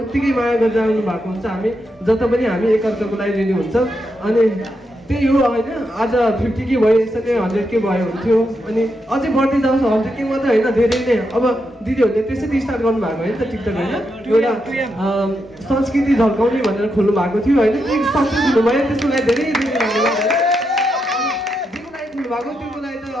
उत्तिकै माया गरेर आउनु भएको हुन्छ। हामी जता पनि हामी एकअर्काको लागि रेडी हुन्छ। अनि त्यही हो होइन, आज 50K भयो, यसरी 100K भयो हुन्थ्यो। अनि अझै बढ्दै जान्छ 100K मात्रै होइन, धेरै नै। अब दिदीहरूले त्यसरी स्टार्ट गर्नुभएको होइन त टिकटक होइन, एउटा संस्कृति झल्काउने भनेर खोल्नु भएको थियो होइन। त्यो सक्सेस हुनुभयो, त्यसको लागि धेरै धेरै धन्यवाद है। जेको लागि खोल्नुभएको त्यसको लागि त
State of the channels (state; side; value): normal; both; correlation 0.84